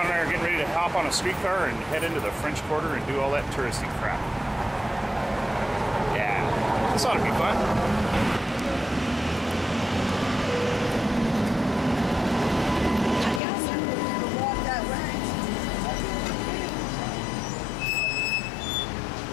and I are getting ready to hop on a streetcar and head into the French Quarter and do all that touristy crap. Yeah, this ought to be fun.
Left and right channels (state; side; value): drops out; right; at 13.4 s